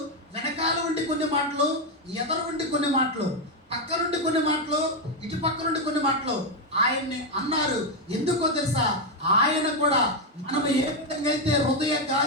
వెనకాల ఉండి కొన్ని మాటలు, ఎదరు ఉండి కొన్ని మాటలు, పక్క నుండి కొన్ని మాటలు, ఇటు పక్క నుండి కొన్ని మాటలు ఆయన్ని అన్నారు. ఎందుకో తెలుసా, ఆయన కూడా మనం ఏ విధంగా అయితే హృదయ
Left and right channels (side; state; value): both; normal; correlation 0.05